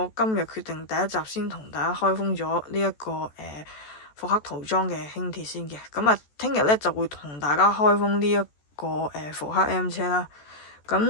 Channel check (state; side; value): late; right; 14 ms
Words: 今日決定第一集先同大家開封咗呢一個復刻塗裝嘅輕鐵先嘅。咁啊，聽日咧就會同大家開封呢一個復刻 M 車啦。